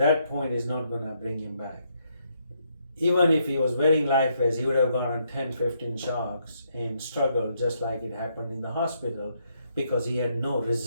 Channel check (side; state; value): both; inverted; correlation -0.75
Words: point is not going to bring him back. Even if he was wearing life vest, he would have gotten 10, 15 shocks and struggled just like it happened in the hospital because he had no